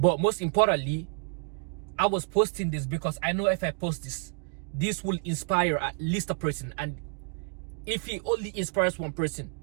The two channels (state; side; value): quieter; left; 38.4 dB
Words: most importantly, I was posting this because I know if I post this, this will inspire at least a person. And if he only inspires one person,